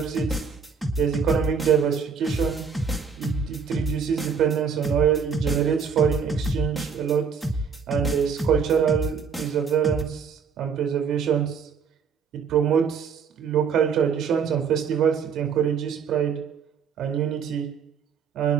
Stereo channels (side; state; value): left; quieter; 6.3 dB